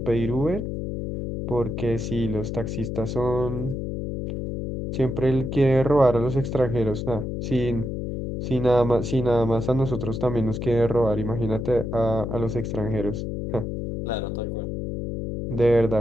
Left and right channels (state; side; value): noise; left; hum, 4 dB below the sound